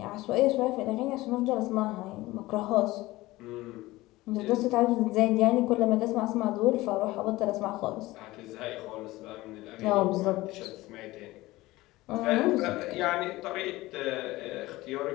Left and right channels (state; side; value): quieter; right; 18.8 dB